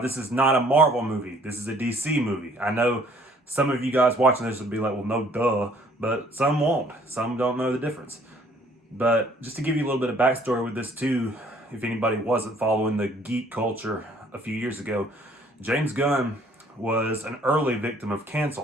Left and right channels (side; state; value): both; normal; correlation 0.59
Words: is not a Marvel movie. This is a DC movie. I know some of you guys watching this would be like, well, no, duh, but some won't. Some don't know the difference. But just to give you a little bit of backstory with this too, if anybody wasn't following the geek culture a few years ago, James Gunn was an early victim of